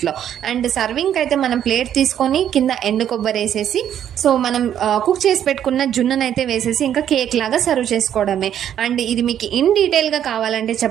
అండ్ సర్వింగ్ అయితే మనం ప్లేట్ తీసుకొని కింద ఎండు కొబ్బరి వేసేసి సో మనం కుక్ చేసి పెట్టుకున్న జున్నునైతే వేసేసి ఇంకా కేక్ లాగా సర్వ్ చేసుకోవడమే. అండ్ ఇది మీకు ఇన్ డీటెయిల్గా కావాలంటే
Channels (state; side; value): quieter; left; 10.0 dB